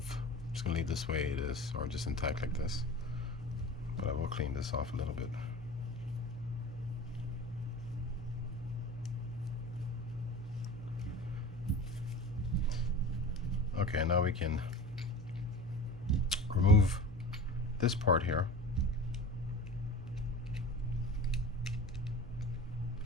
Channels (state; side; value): normal; both; correlation 0.36